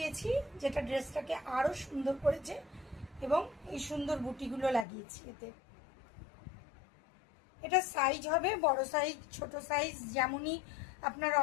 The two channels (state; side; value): drops out; right; at 4.9 s